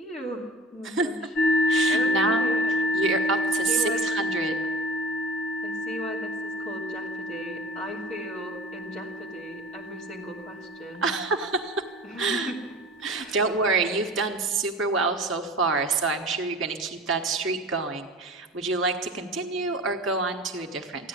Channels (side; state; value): both; normal; correlation 0.39